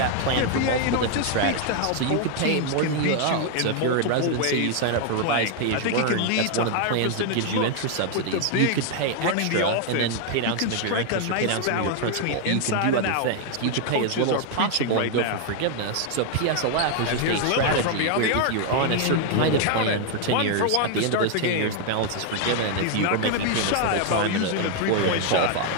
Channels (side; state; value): both; different; correlation 0.00